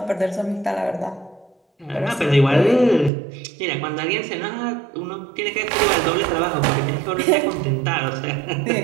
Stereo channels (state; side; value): drops out; left; at 3.1 s